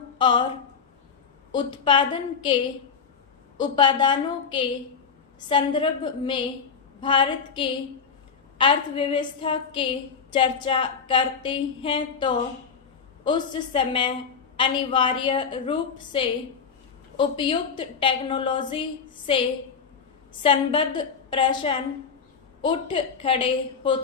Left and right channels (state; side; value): quieter; right; 6.1 dB